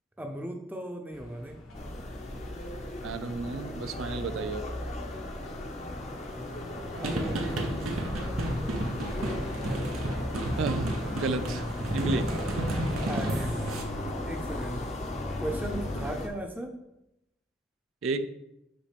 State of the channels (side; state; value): both; normal; correlation 0.67